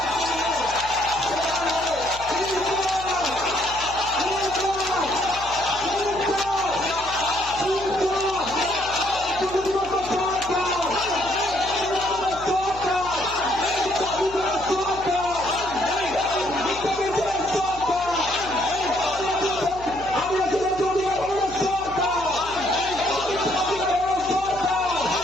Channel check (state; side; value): noise; left; hum, 16 dB below the sound